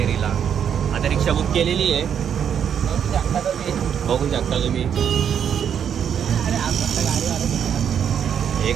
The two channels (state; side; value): quieter; left; 8.3 dB